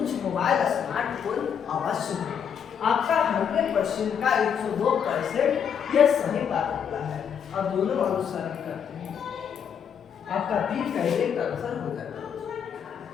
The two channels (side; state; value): right; quieter; 7.8 dB